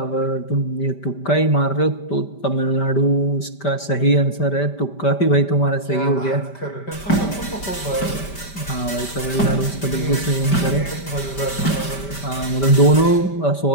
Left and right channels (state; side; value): late; right; 5.1 ms